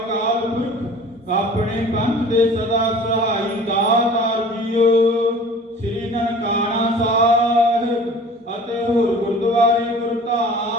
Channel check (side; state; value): both; normal; correlation 0.45